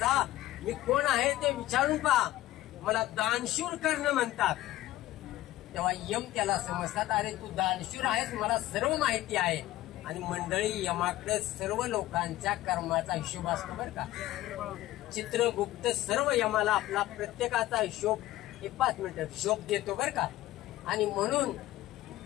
मी कोण आहे ते विचारून पहा. मला दानशूर कर्ण म्हणतात. तेव्हा यम त्याला समजतात, अरे तू दानशूर आहेस, मला सर्व माहिती आहे. आणि मंडळी, यमाकडे सर्व लोकांच्या कर्माचा हिशोब असतो बरं का. चित्रगुप्त सर्व यमाला आपला प्रत्येकाचा हिशोब 5 मिनिटं हिशोब देतो बरं का. आणि म्हणून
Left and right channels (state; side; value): quieter; right; 15.6 dB